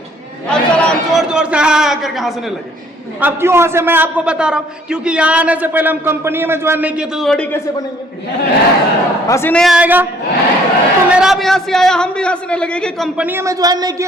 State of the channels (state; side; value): normal; both; correlation 0.60